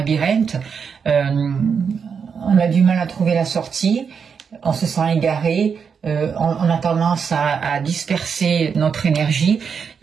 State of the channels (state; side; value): quieter; left; 6.4 dB